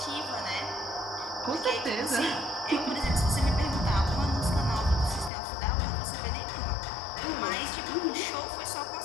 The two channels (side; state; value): right; drops out; at 5.3 s